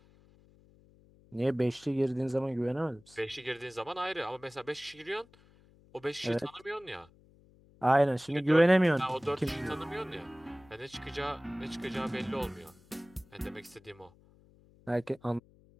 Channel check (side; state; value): left; noise; hum, 27 dB below the sound